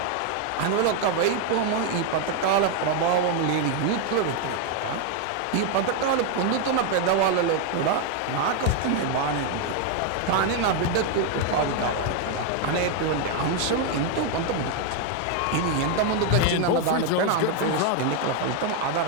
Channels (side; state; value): both; different; correlation 0.01